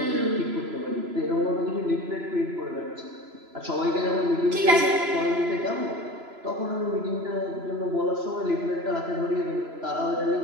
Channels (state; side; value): late; left; 3.0 ms